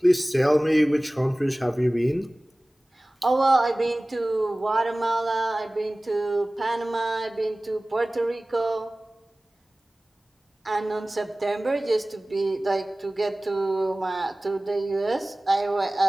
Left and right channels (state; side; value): normal; both; correlation 0.98